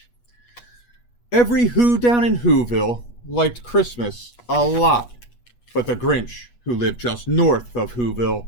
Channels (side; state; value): right; late; 8.3 ms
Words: Every Who down in Whoville liked Christmas a lot, but the Grinch, who lived just north of Whoville,